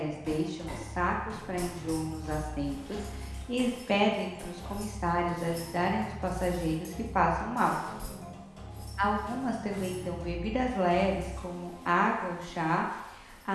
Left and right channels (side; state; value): both; identical; correlation 1.00